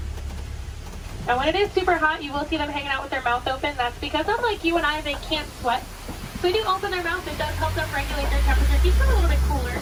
Now when it is super hot, you will see them hanging out with their mouth open. That's because unlike you and I, they can't sweat. So they do open their mouth. It does help them regulate their temperature, keep them a little bit cooler.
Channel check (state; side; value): identical; both; correlation 1.00